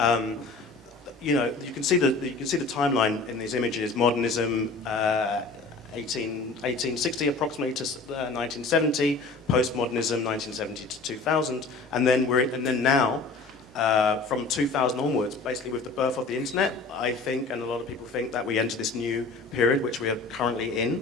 you can see the timeline in these images. Modernism, 1860 approximately to 1970. Postmodernism, 1970 to 2000, and then now, from 2000 onwards, basically with the birth of the internet, I think, and a lot of people think, that we enter this new period which we are currently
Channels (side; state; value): right; quieter; 3.8 dB